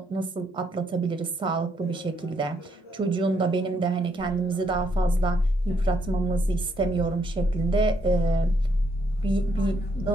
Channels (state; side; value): normal; both; correlation 0.73